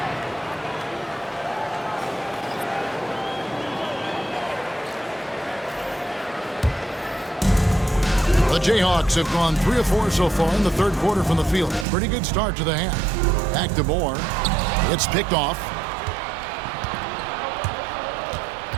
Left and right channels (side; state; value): left; drops out; at 11.9 s